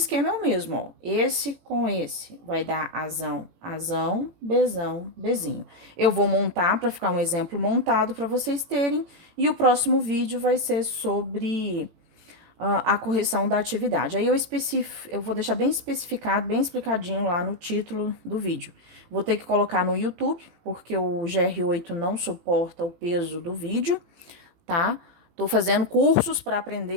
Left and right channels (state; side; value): late; left; 18 ms